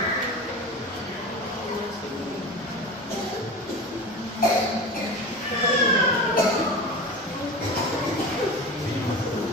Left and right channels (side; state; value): both; normal; correlation 0.30